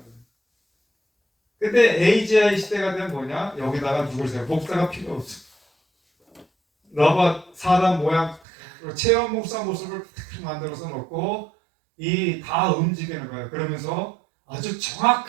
근데 AGI 시대가 되면 뭐냐? 여기다가 누굴 세요? 목사가 필요 없어. 로봇 사람 모양 체험 목사 모습을 만들어서 놓고 이 다 움직이는 거예요. 그러면서 아주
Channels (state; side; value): drops out; left; at 8.4 s